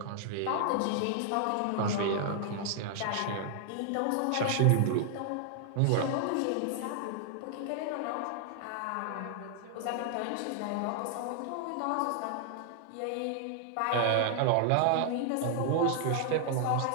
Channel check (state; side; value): different; both; correlation 0.00